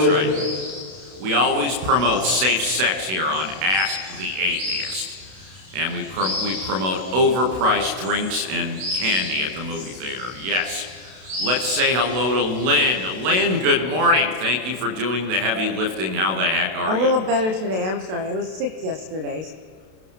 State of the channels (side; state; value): left; late; 32 ms